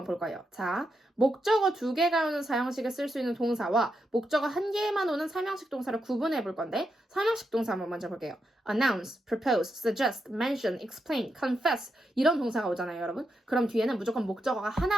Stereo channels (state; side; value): normal; both; correlation 0.84